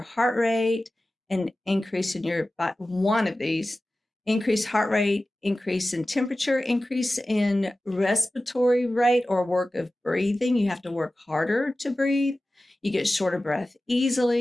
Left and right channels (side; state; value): both; normal; correlation 0.96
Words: heart rate, an increase in one of these, increased heart rate, increase in temperature, increase in respiratory rate or work of breathing, you have to work harder to breathe, you get short of breath